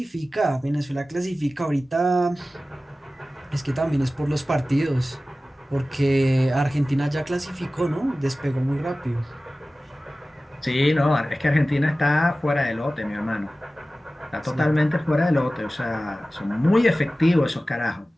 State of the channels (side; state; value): both; normal; correlation 0.96